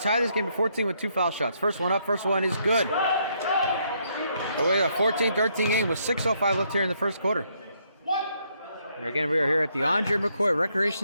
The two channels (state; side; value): inverted; both; correlation -0.73